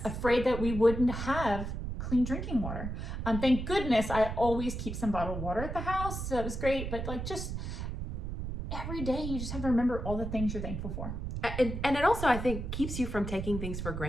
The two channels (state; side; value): noise; right; rumble, 5 dB below the sound